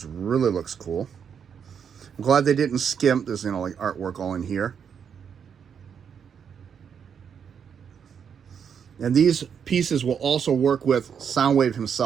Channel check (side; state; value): left; quieter; 7.4 dB